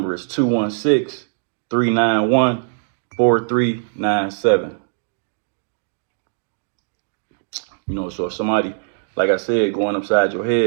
is 216-391-4397. So if somebody, like I said, going upside your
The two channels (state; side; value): silent; left; digital silence